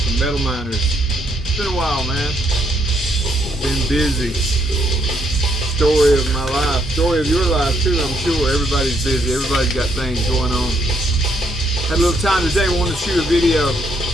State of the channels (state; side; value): normal; both; correlation 0.73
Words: Metal Miners. It's been a while, man. Been busy. Story of my life. Story of your life, too, I'm sure. Everybody's busy. Everybody's got things going on. Had a little time today. Wanted to shoot a video.